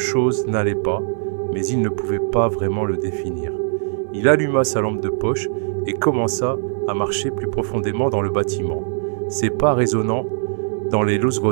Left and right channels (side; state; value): left; silent; 65 dB below the other